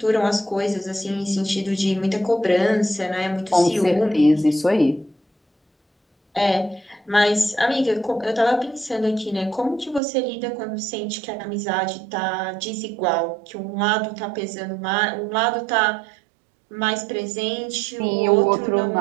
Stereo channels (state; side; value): drops out; left; at 10.0 s